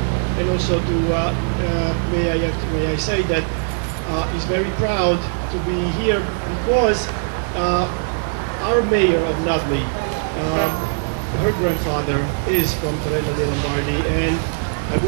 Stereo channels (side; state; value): left; silent; 64 dB below the other